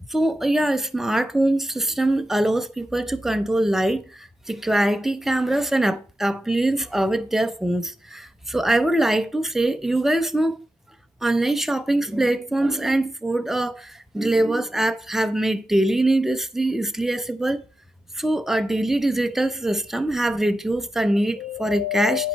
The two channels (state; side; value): normal; both; correlation 0.91